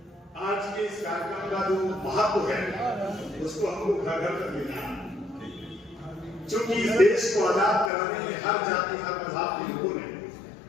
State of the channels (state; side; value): drops out; right; at 7.9 s